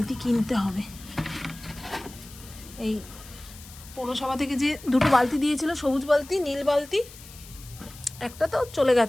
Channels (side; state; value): left; noise; hiss, 18 dB below the sound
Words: কিনতে হবে। এই পৌরসভা থেকে যে 2টো বালতি দিয়েছিল, সবুজ বালতি নীল বালতি, একটা তো চলে